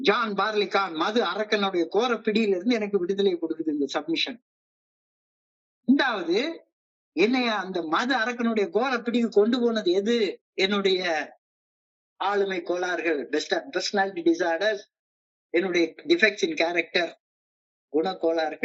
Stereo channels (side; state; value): both; identical; correlation 1.00